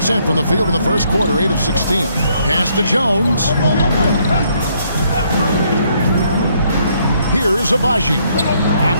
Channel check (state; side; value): inverted; both; correlation -0.70